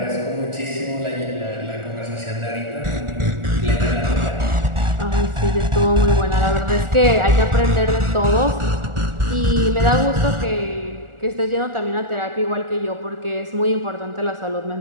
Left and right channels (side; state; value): left; late; 1.4 ms